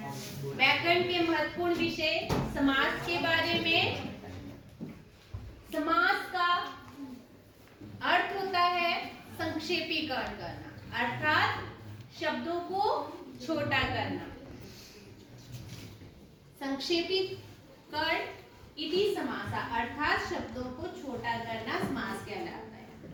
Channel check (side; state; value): both; identical; correlation 1.00